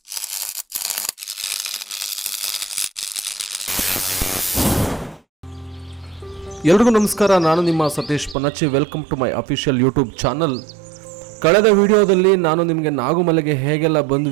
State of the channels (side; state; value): left; drops out; at 8.3 s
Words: ಎಲ್ರಿಗೂ ನಮಸ್ಕಾರ. ನಾನು ನಿಮ್ಮ Satish Panacchi. Welcome to my official YouTube channel. ಕಳೆದ ವಿಡಿಯೋದಲ್ಲಿ ನಾನು ನಿಮಗೆ ನಾಗುಮಲೆಗೆ ಹೇಗೆಲ್ಲ